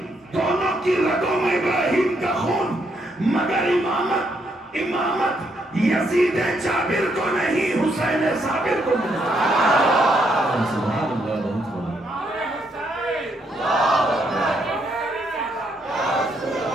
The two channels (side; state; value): both; normal; correlation 0.75